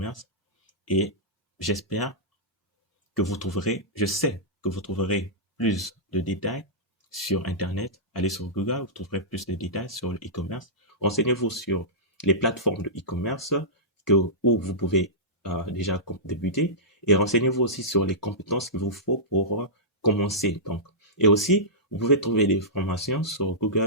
et j'espère que vous trouverez, je sais que vous trouverez plus de détails sur Internet. Allez sur Google, vous trouverez plus de détails sur le e-commerce. Renseignez-vous sur les plateformes de e-commerce où vous pouvez déjà débuter et renseignez-vous aussi sur les compétences qu'il vous faut pour commencer. Donc, et aussi, vous pouvez trouver des formations sur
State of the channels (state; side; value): normal; both; correlation -0.16